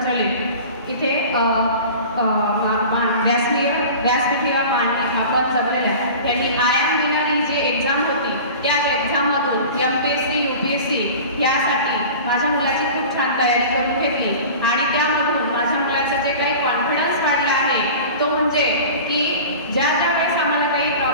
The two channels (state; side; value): inverted; both; correlation -0.37